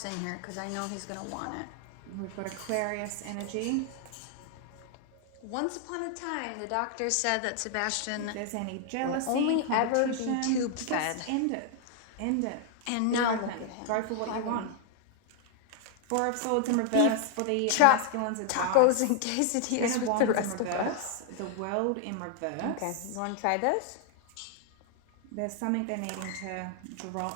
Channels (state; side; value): different; both; correlation 0.00